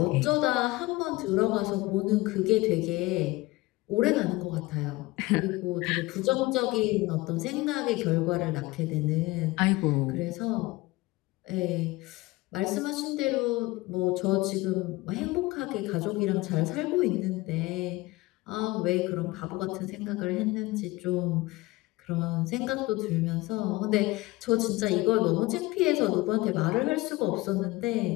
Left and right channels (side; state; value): right; quieter; 20.7 dB